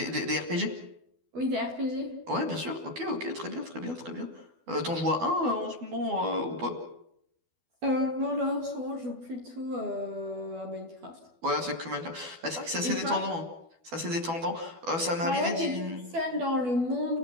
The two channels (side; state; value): left; late; 12 ms